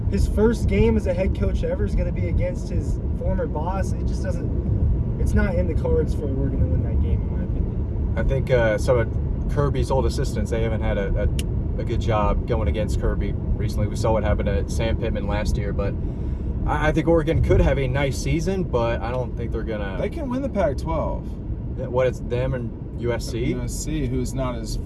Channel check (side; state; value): both; identical; correlation 1.00